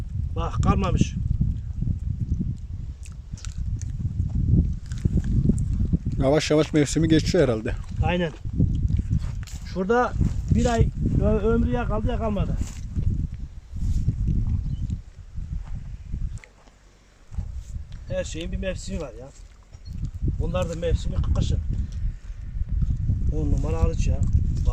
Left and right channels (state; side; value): identical; both; correlation 1.00